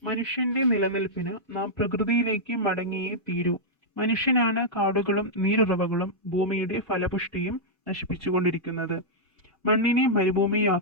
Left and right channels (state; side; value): normal; both; correlation -0.08